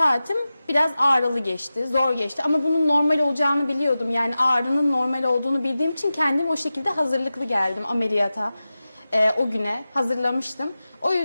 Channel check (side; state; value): both; inverted; correlation -0.95